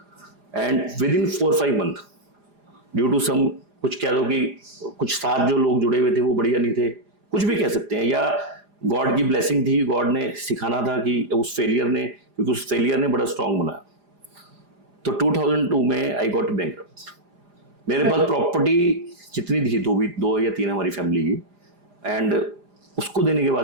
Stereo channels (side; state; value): left; late; 4.9 ms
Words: and within 4-5 month due to some, कुछ कह दो कि कुछ साथ जो लोग जुड़े हुए थे वो बढ़िया नहीं थे, कुछ भी कह सकते हैं, या गॉड की ब्लेसिंग थी, गॉड ने सिखाना था कि उस फेलियर ने, क्योंकि उस फेलियर ने बड़ा स्ट्रांग बनाया। तो 2002 में आई गॉट बैंकरप्ट। मेरे पास प्रॉपर्टी जितनी थी, दो या तीन हमारी फैमिली की, एंड उसको देने के